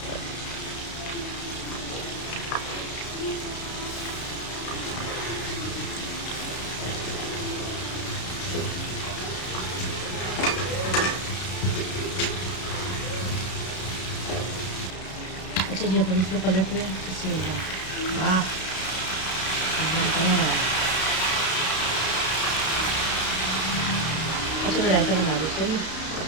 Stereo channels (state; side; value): late; right; 32 ms